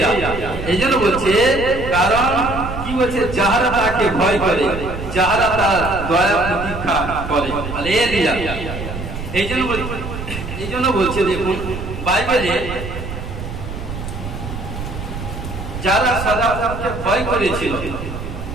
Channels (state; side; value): noise; right; rumble, 8 dB below the sound